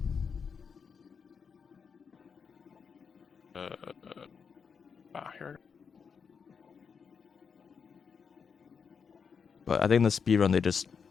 Here. But I think in the speedrun they just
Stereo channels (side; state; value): right; quieter; 6.2 dB